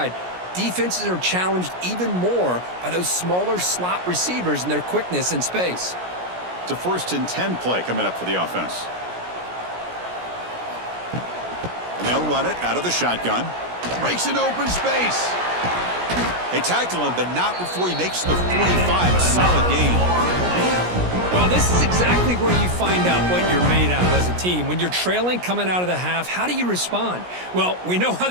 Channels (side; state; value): left; late; 17 ms